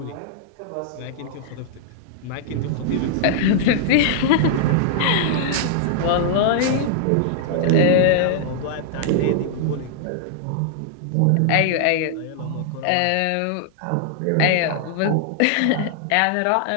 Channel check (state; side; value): different; both; correlation -0.01